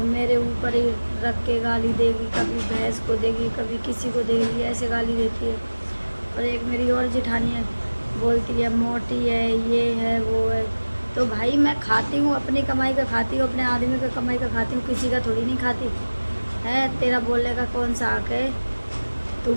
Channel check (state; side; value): inverted; both; correlation -1.00